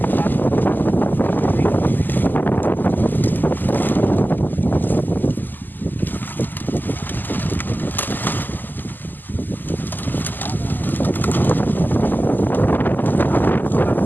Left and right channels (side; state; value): right; late; 0.088 ms